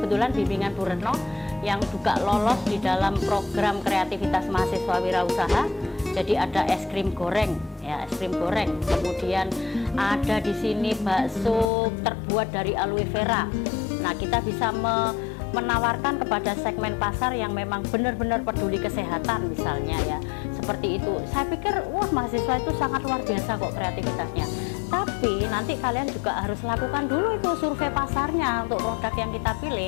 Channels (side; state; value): right; drops out; at 11.7 s